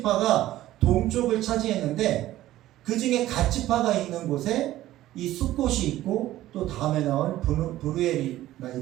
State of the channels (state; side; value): quieter; left; 14.7 dB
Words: 동쪽을 차지했는데 그 중에 갓지파가 있는 곳에 이 숫곳이 있고 또 다음에 나올 브루엘이가